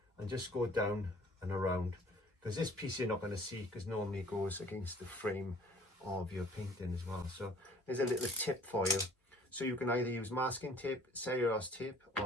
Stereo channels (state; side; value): normal; both; correlation 0.54